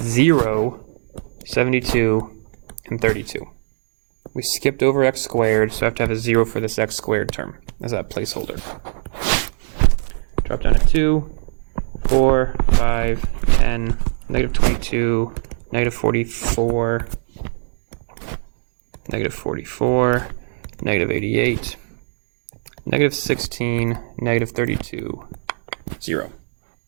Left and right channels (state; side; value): silent; left; digital silence